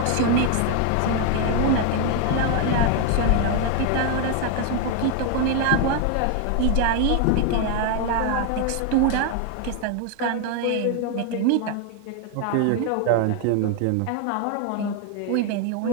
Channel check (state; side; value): different; both; correlation 0.00